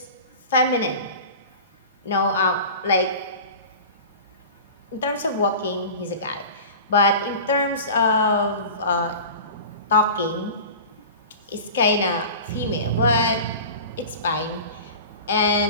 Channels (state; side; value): inverted; both; correlation -0.36